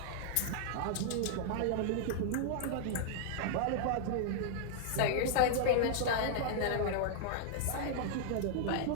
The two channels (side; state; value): both; different; correlation -0.01